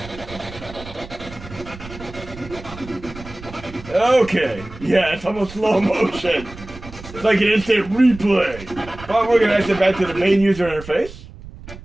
Okay, yeah, it's almost slow motion. It's like an instant replay. But we're going to exit back to the main user interface.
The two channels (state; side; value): noise; right; rumble, 16 dB below the sound